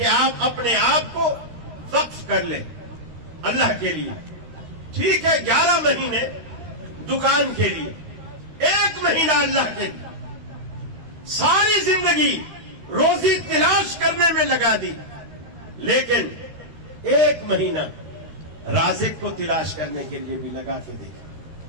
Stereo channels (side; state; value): left; late; 13 ms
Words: آپ اپنے آپ کو وقف کر لیں اللہ کے لیے۔ ٹھیک ہے 11 مہینے دکان کے لیے، 1 مہینہ اللہ کے لیے، ساری زندگی روزی تلاش کرنے میں لگا دی، لیکن 1 مہینہ رازق کو تلاش کرنے کے لیے بھی لگا کے دیکھیں،